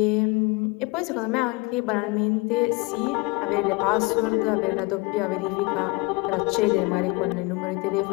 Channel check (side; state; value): right; quieter; 25.5 dB